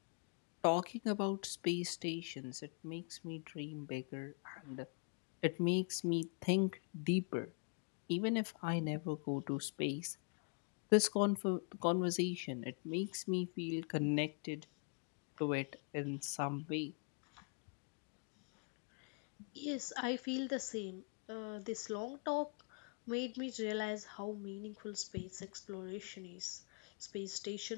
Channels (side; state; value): right; quieter; 38.4 dB